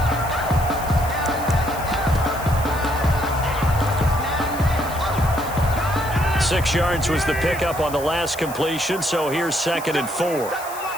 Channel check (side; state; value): left; noise; hiss, 14 dB below the sound